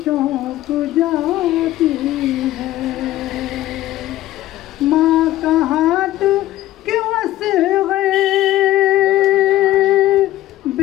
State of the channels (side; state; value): right; quieter; 15.0 dB